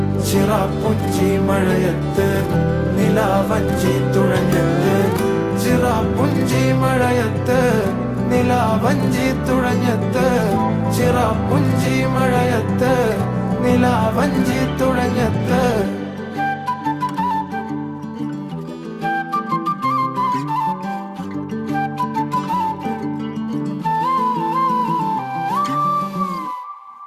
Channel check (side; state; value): both; identical; correlation 1.00